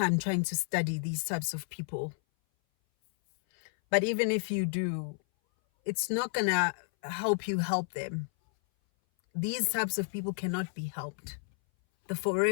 trying to study these types of people. But even if you do, it's not gonna help you help them. These types of people cannot be helped. The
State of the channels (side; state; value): right; silent; 57 dB below the other